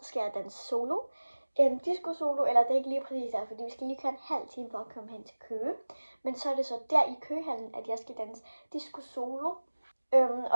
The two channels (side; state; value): both; inverted; correlation -1.00